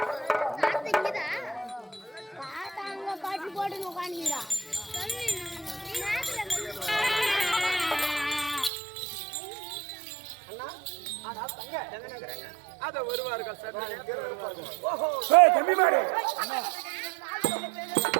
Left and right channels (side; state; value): left; drops out; at 8.7 s